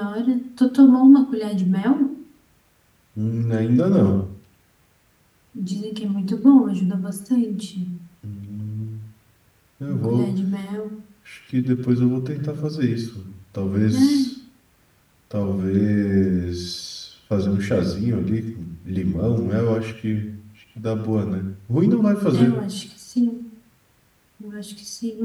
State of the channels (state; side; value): identical; both; correlation 1.00